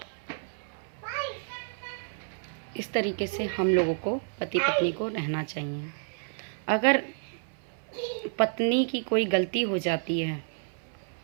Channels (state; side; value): silent; left; 58 dB below the other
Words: इस तरीके से हम लोगों को पति पत्नी को रहना चाहिए। अगर पत्नी की कोई गलती हो जाती है